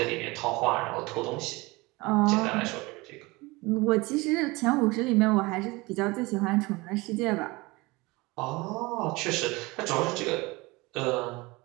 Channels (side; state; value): left; quieter; 23.3 dB